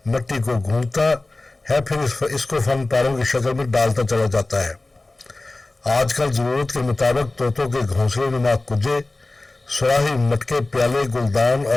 मिट्टी को गूंथता है, फिर इसको फन पारों की शक्ल में डालता चला जाता है। आजकल जरूरत के मुताबिक तोतों के घोंसले नुमा कुजे, सुराही मटके, प्याले, गुलदान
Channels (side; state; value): right; quieter; 3.0 dB